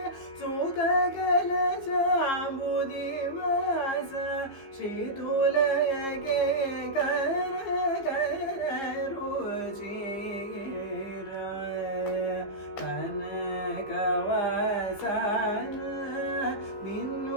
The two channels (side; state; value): right; late; 15 ms